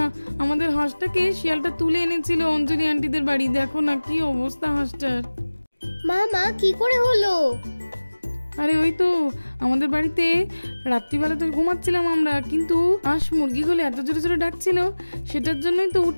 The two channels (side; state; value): both; inverted; correlation -1.00